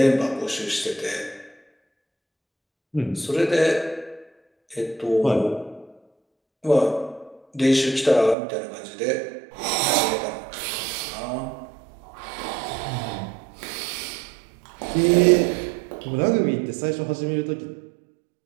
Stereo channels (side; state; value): left; drops out; at 8.3 s